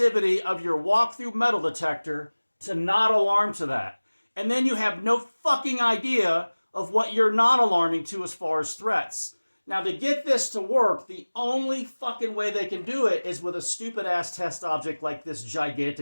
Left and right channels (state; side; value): inverted; both; correlation -1.00